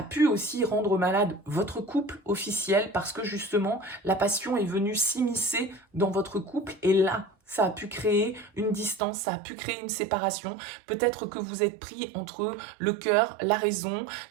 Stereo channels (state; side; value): drops out; left; at 9.0 s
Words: pu aussi rendre malade votre couple officiel parce que justement la passion est venue s'immiscer dans votre couple et là, ça a pu créer une distance, ça a pu créer une séparation. Peut-être que vous êtes pris entre le cœur, la raison,